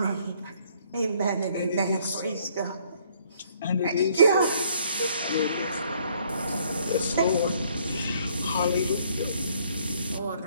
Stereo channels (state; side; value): inverted; both; correlation -0.64